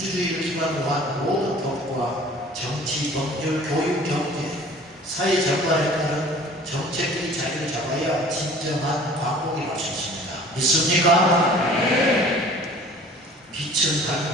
기반으로 한 모든 법과 정치, 법률, 교육, 경제, 사회 전반에 따른 정책들이 자리를 잡아야 진정한 광복이 갈 수 있습니다. 믿습니까? 빛은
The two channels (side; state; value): both; normal; correlation 0.48